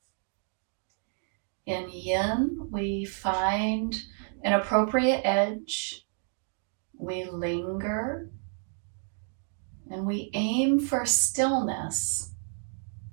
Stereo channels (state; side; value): silent; left; 58 dB below the other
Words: In Yin, we find an appropriate edge, we linger, and we aim for stillness.